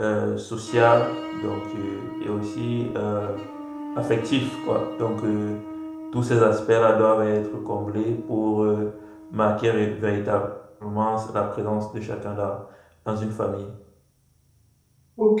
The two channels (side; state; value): both; identical; correlation 1.00